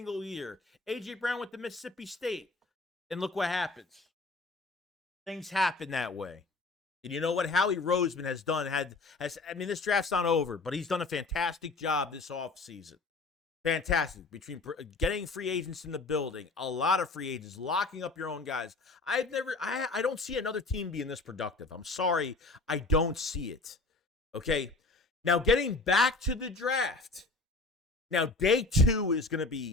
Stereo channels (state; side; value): quieter; right; 3.4 dB